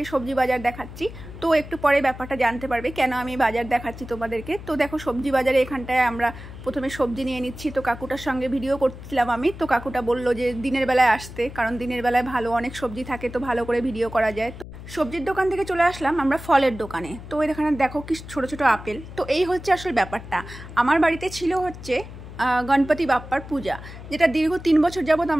সবজি বাজার দেখাচ্ছি। তো একটু পরে ব্যাপারটা জানতে পারবে কেন আমি বাজার দেখাচ্ছি তোমাদেরকে। তো দেখো, সবজি বাজারে এখানটায় আমরা প্রথমে সবজি নিয়ে নিচ্ছি। তো কাকুটার সঙ্গে ভিডিও করছিলাম আমি, তো কাকুটা বললো যে দিনের বেলায় আসতে, কারণ দিনের বেলায় ভালো অনেক সবজি থাকে, তো ভালো করে ভিডিও করা যায়। সবজির দোকান থেকে চলে আসলাম আমরা ফলের দোকানে। তো এখানে দেখো কি ছোট ছোট আপেল। তো এই হচ্ছে আসল ব্যাপারটা। আমার বাড়িতে ছিল হচ্ছে গণপতি বাপ্পার পূজা, যেটা দীর্ঘ 3 বছর যাবৎ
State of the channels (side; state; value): left; noise; hum, 13 dB below the sound